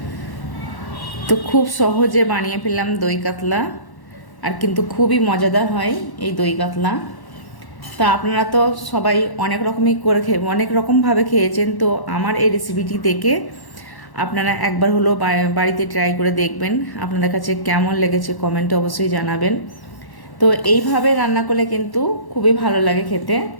তো খুব সহজে বানিয়ে ফেললাম দই কাতলা, আর কিন্তু খুবই মজাদার হয় এই দই কাতলা। তা আপনারা তো সবাই অনেক রকমই করে অনেক রকমভাবে খেয়েছেন, তো আমার এই রেসিপিটি দেখে আপনারা একবার হলো বাড়িতে ট্রাই করে দেখবেন। আপনাদের কাছে কেমন লেগেছে কমেন্টে অবশ্যই জানাবেন। তো এইভাবে রান্না করলে কিন্তু খুবই ভালো লাগে খেতে।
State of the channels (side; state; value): right; late; 1.1 ms